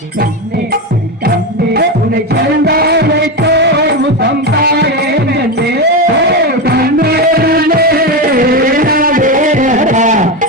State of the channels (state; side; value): normal; both; correlation 0.15